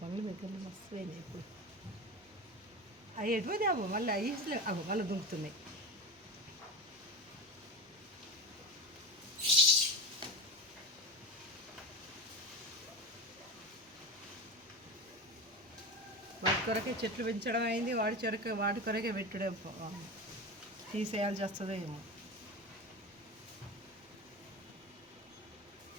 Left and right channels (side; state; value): both; normal; correlation 0.22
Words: దగ్గరలో మస్తు అయినాయి. ఇప్పుడు అవి ఎటువది అవ్వ మళ్ళీ ఐస్లే అవ్వ మళ్ళీ దుంకుతున్నాయి. వాటి కొరకే చెట్లు పెంచడం అయింది, వాటి కొరకే పెట్టుడే తీసేయాల్సి వస్తుందో ఏమో.